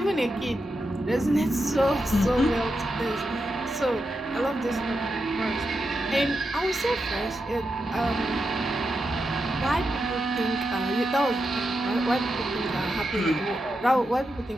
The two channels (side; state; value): both; normal; correlation 0.87